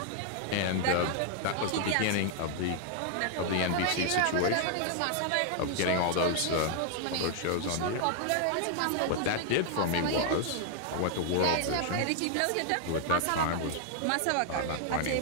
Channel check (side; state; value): both; different; correlation 0.00